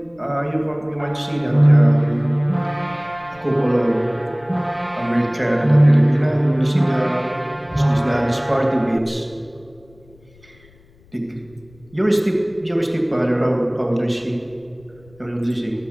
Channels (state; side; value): noise; left; rumble, 28 dB below the sound